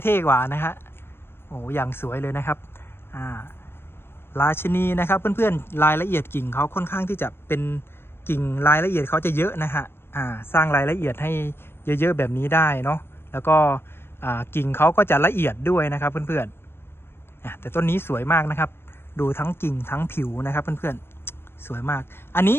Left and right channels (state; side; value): late; right; 0.11 ms